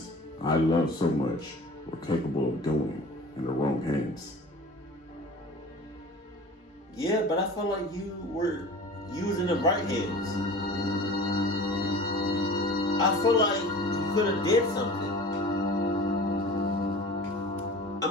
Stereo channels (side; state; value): both; normal; correlation 0.39